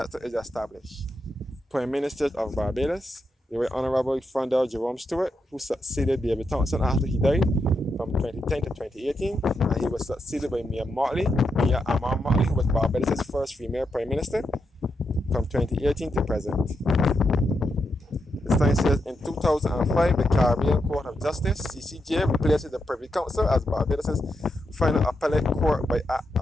is established. Prime Minister of Barbados, the Right Honorable Frondell Jerome Stewart, who succeeded David Thompson after he died from 2010 to 2018, and he was succeeded by Mia Amar Motley, who was Barbados' first female Prime Minister from 2018 to present. The sign says, in 2005, the Caribbean Court of Justice, CCJ, replaces the Privy Council as Barbados' final appellate court by Act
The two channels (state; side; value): normal; both; correlation 0.84